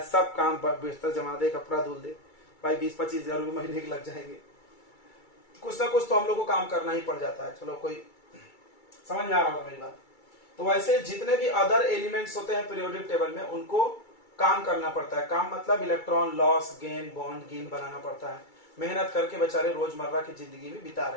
सब काम, बिस्तर जमा दे, कपड़ा धुल दे। भाई 20-25 हजार रुपये महीने के लग जाएंगे। कुछ ना कुछ तो हम लोग को काम करना ही पड़ जाता है। चलो, कोई समझ में आ रहा होगा मेरी बात? तो वैसे जितने भी अदर एलिमेंट्स होते हैं पीरियोडिक टेबल में, उनको काम करना पड़ता है। काम मतलब electron loss, gain, bond gain बनाना पड़ता है। मेहनत करके बेचारे रोजमर्रा की जिंदगी में बिता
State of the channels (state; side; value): late; right; 2.3 ms